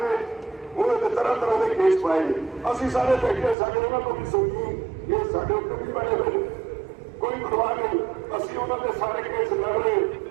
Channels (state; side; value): drops out; left; at 3.6 s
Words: ਨੇ ਉਹਨਾਂ ਦੇ ਤਰ੍ਹਾਂ ਤਰ੍ਹਾਂ ਦੇ ਕੇਸ ਪਾਏ ਨੇ। ਅਸੀਂ ਸਾਰੇ ਬੈਠੇ, ਸਾਡੇ ਉਹਨਾਂ ਤੋਂ ਵੀ ਸੁਣੀ, ਇਹ ਸਾਡੇ ਉੱਤੇ ਵੀ ਪਏ ਹੋਏ ਨੇ। ਕੋਈ ਪਰਵਾਹ ਨਹੀਂ। ਉਹਨਾਂ ਦੇ ਸਾਰੇ ਕੇਸ ਲੜ ਰਹੇ,